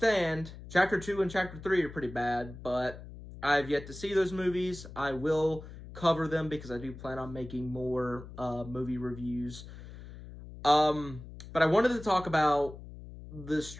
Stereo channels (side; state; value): left; noise; hum, 14 dB below the sound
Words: Chapter 2 and Chapter 3 are pretty bad, but I've yet to see those movies. I will cover them because I do plan on making more, movie reviews. But I wanted to talk about the